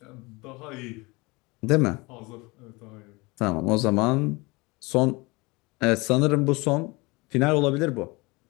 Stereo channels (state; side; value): quieter; right; 25.0 dB